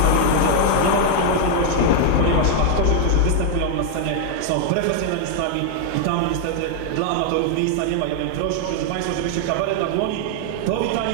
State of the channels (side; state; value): both; different; correlation 0.00